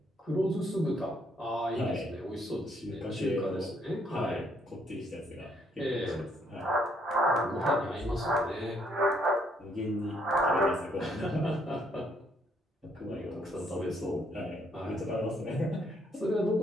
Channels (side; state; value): both; normal; correlation 0.70